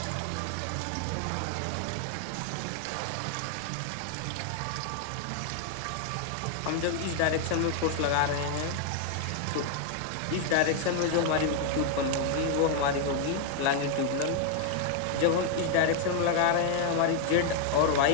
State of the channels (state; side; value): different; both; correlation 0.00